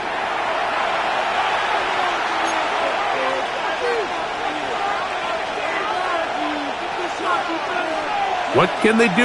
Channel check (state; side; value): identical; both; correlation 1.00